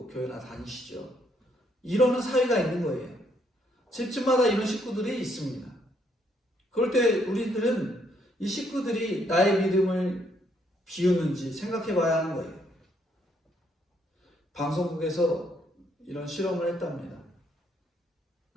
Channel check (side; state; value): both; normal; correlation 0.71